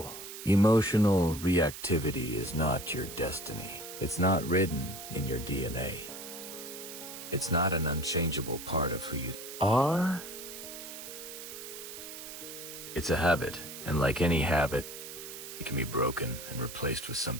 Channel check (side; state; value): right; noise; hiss, 11 dB below the sound